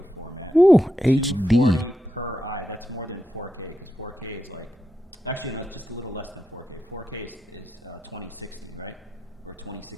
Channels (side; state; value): both; normal; correlation 0.86